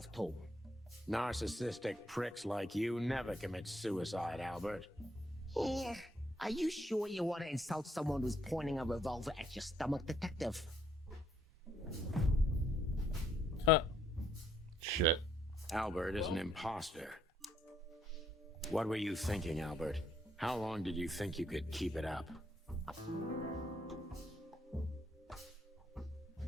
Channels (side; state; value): both; normal; correlation 0.70